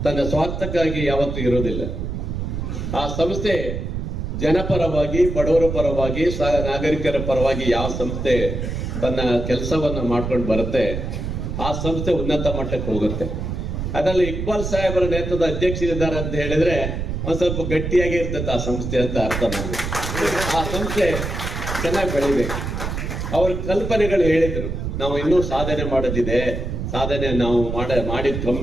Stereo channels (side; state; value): right; noise; rumble, 4 dB below the sound